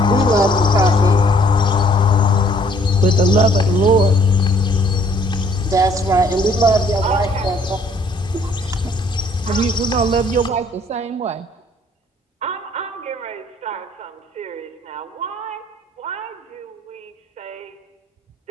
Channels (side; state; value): both; normal; correlation 0.62